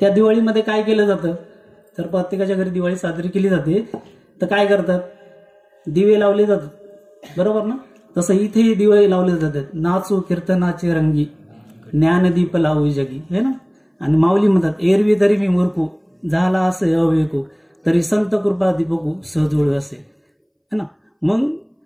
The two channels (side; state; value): both; identical; correlation 1.00